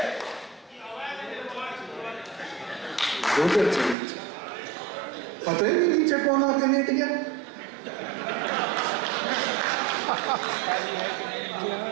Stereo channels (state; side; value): drops out; left; at 4.0 s